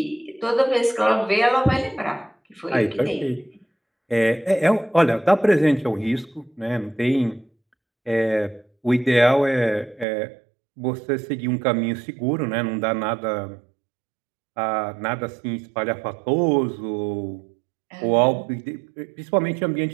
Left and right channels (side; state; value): left; drops out; at 10.1 s